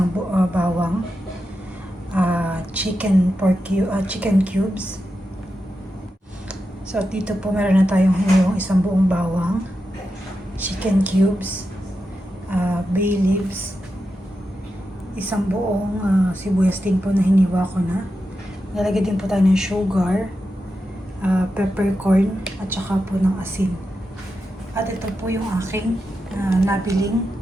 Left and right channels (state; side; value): normal; both; correlation 0.89